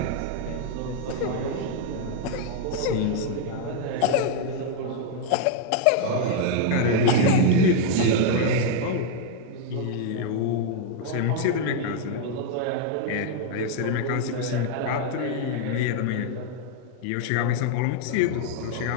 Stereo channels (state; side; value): different; both; correlation 0.00